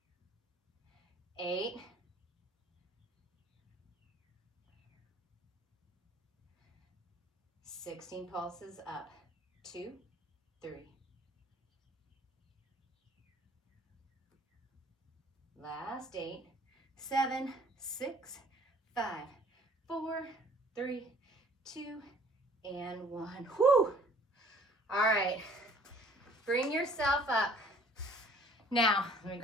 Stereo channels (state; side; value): normal; both; correlation 0.54